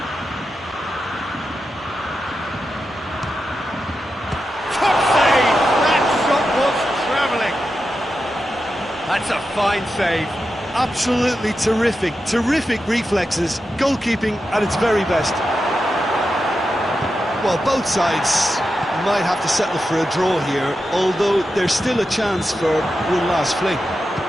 That's a fine save. Absolutely terrific, terrific reflexes. Goalkeeping at its very best. Well, both sides might have to settle for a draw here, although there's still a chance for one last fling.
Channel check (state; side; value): normal; both; correlation 0.89